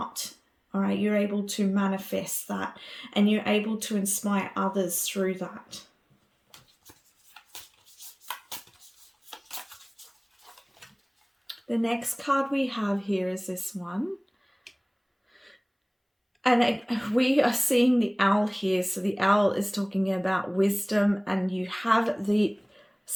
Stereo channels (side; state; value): both; identical; correlation 1.00